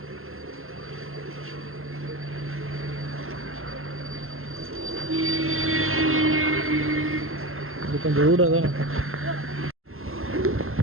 இது கொஞ்சம் ரூடாக தான்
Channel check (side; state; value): left; late; 0.62 ms